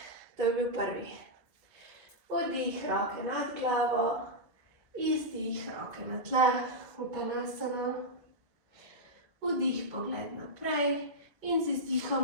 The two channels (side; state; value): left; late; 1.9 ms